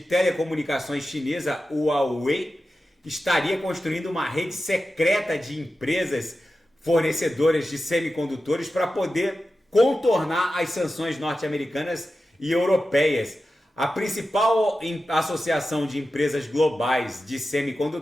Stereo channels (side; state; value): both; normal; correlation 0.92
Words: telecomunicações chinesa, Huawei, estaria construindo uma rede secreta de empresas fornecedoras de semicondutores para poder contornar as sanções norte-americanas e europeias. A principal associação de empresas globais de